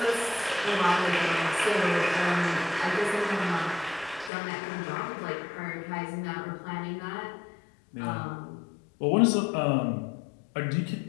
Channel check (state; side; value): drops out; right; at 4.3 s